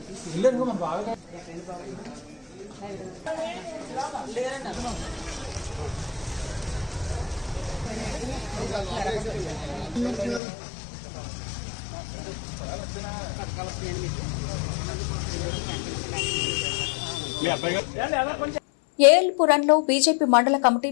ఏఎల్పురంలో బీజేపీ మండల కమిటీ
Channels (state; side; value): drops out; right; at 10.4 s